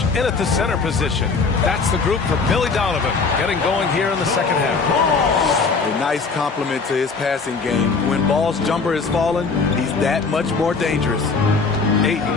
in at the center position. That's the group for Billy Donovan, getting going here in the second half. A nice compliment to his passing game. When Ball's jumper is falling, he's that much more dangerous.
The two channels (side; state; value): right; quieter; 4.6 dB